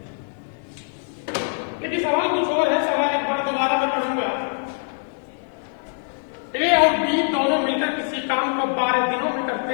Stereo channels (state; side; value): silent; right; 59 dB below the other